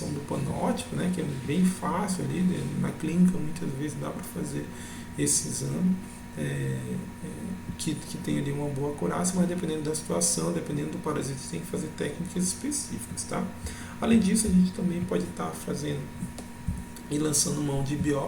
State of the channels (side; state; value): both; identical; correlation 1.00